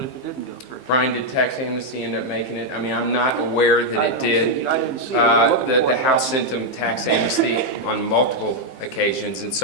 didn't go through? Brian, did tax amnesty end up making it? I mean, I'm not aware that it did. I didn't see it. The House sent them tax amnesty on multiple occasions, and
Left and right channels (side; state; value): right; late; 15 ms